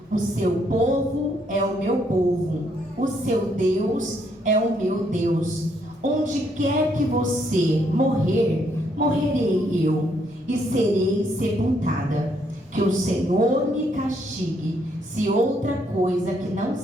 O seu povo é o meu povo, o seu Deus é o meu Deus. Onde quer que você morrer, morrerei eu, e serei sepultada. Que o Senhor me castigue, se outra coisa que não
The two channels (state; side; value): normal; both; correlation 0.72